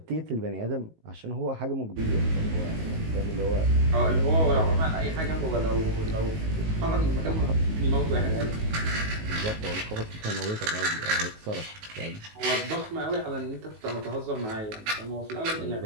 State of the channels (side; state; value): left; late; 19 ms